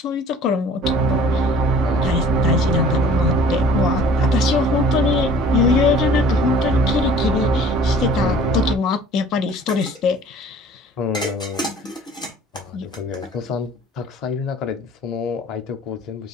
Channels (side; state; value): both; normal; correlation 0.49